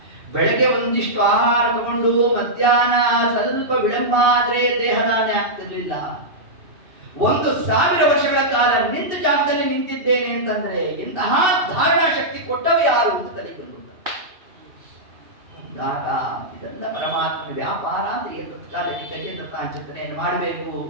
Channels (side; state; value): left; late; 2.7 ms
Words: ಬೆಳಗ್ಗೆ ಒಂದಿಷ್ಟು ಆಹಾರ ತಗೊಂಡು ಮಧ್ಯಾಹ್ನ ಸ್ವಲ್ಪ ವಿಳಂಬ ಆದ್ರೆ ದೇಹದಾಣೆ ಆಗ್ತಿರ್ಲಿಲ್ಲ. 1,000 ವರ್ಷಗಳ ಕಾಲ ನಿಂತ ಜಾಗದಲ್ಲಿ ನಿಂತಿದ್ದೇನೆ ಅಂತಂದ್ರೆ ಇಂತಹ ಧಾರಣಾ ಶಕ್ತಿ ಕೊಟ್ಟವ ಯಾರು ಅಂತ ತಲೆಗೆ ಬಂದು ಅಂದಾಗ ಇದೆಲ್ಲ ಪರಮಾತ್ಮನ ವ್ಯಾಪಾರ ಅಂತ ಕಾಲಕ್ಕೆ ಗಜೇಂದ್ರ ಚಿಂತನೆಯನ್ನು ಮಾಡಬೇಕು.